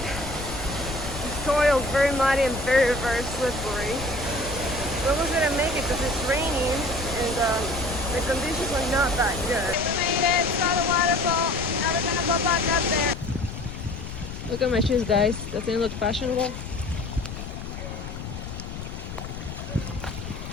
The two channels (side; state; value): left; noise; rumble, 9 dB below the sound